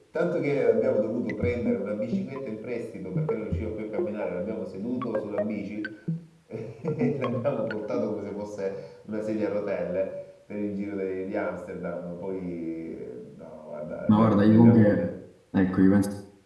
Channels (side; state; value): both; identical; correlation 1.00